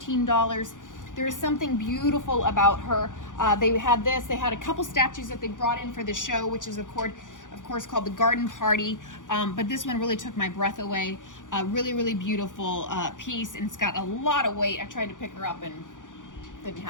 There is something beautiful about her. They had this. They had a couple statues that they brought in for the show, which is of course called the Garden Party. But this one really took my breath away. Really, really beautiful piece, and it's got a lot of weight. I tried to pick her up and didn't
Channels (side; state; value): right; late; 0.87 ms